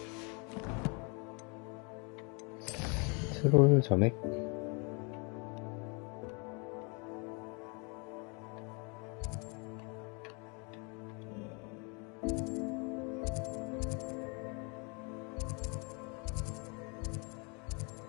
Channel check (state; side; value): quieter; right; 32.9 dB